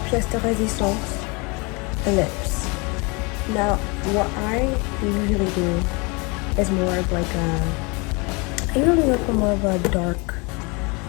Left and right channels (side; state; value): right; quieter; 29.2 dB